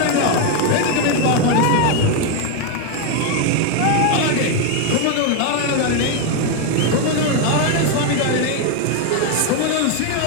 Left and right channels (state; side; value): different; both; correlation 0.01